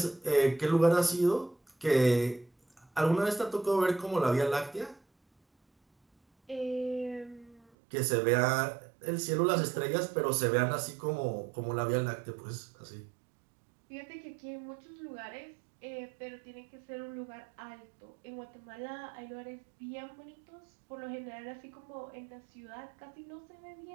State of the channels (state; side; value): drops out; left; at 7.6 s